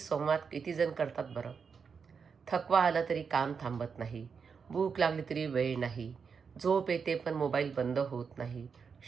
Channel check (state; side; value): quieter; left; 5.9 dB